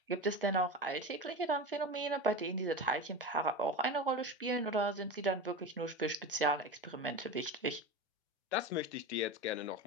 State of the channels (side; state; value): both; normal; correlation 0.25